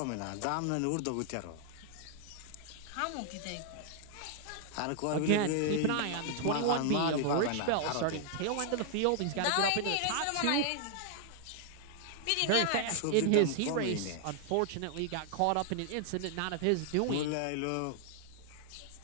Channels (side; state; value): both; different; correlation 0.00